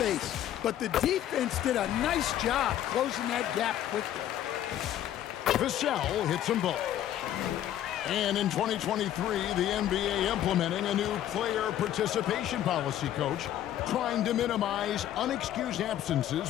but the defense did a nice job closing that gap quickly. Vassell hits them both. And in 2023, the NBA implementing a new player participation policy, Coach, trying to minimize unexcused absences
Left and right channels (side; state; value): right; quieter; 11.7 dB